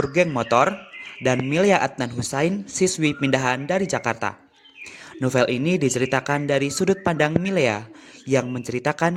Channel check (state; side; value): identical; both; correlation 1.00